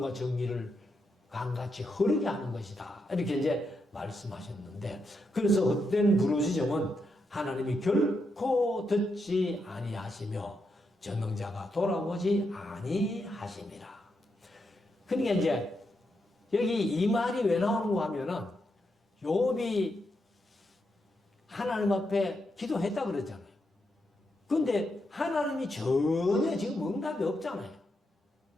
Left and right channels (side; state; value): both; normal; correlation 0.83